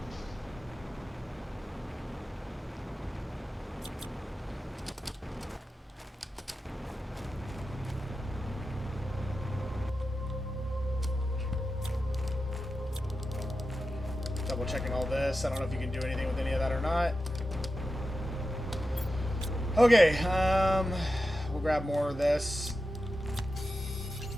Double checking all this. I don't know if you can do anything with any of that or not. Okay, we'll grab more of this.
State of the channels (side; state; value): both; normal; correlation 0.91